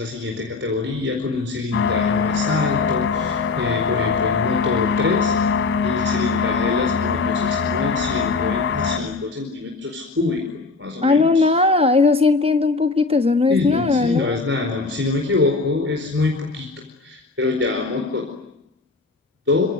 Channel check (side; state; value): right; quieter; 3.9 dB